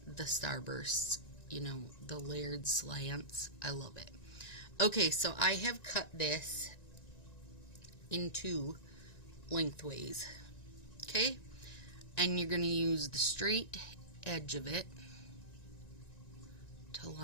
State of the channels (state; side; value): late; right; 1.9 ms